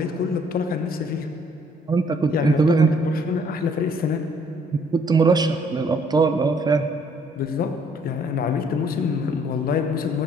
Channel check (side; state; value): both; normal; correlation 0.63